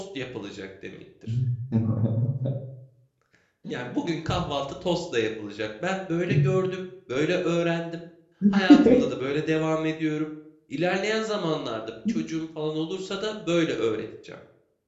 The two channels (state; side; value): identical; both; correlation 1.00